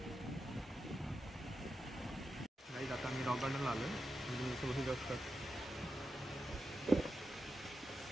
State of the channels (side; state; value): both; normal; correlation 0.89